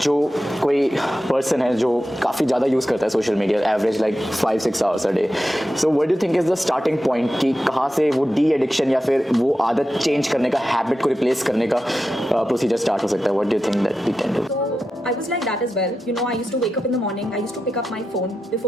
जो कोई person है जो काफ़ी ज़्यादा use करता है social media, average like 5-6 hours a day. So what do you think is the starting point कि कहाँ से वो de-addiction या फिर वो आदत change करने का, habit को replace करने का procedure start हो सकता है? What do you think that we can do? I was like that as well. I used to wake up in the morning. I used to pick up my phone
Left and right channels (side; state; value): both; normal; correlation 0.90